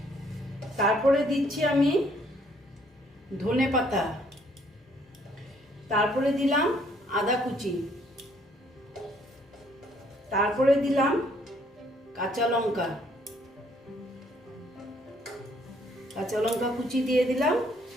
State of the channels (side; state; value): both; normal; correlation 0.65